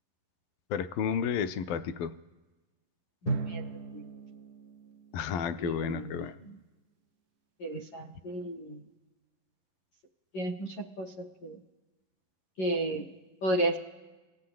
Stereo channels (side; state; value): right; late; 11 ms